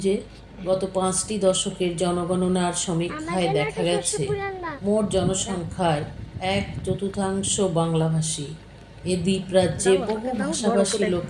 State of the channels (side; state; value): both; identical; correlation 1.00